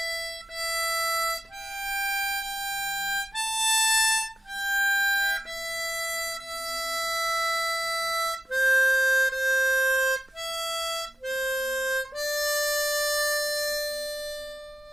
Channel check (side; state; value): both; normal; correlation 0.92